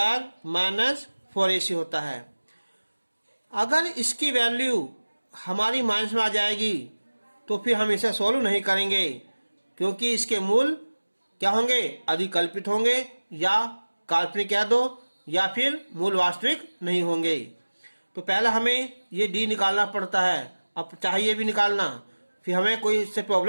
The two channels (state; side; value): inverted; both; correlation -1.00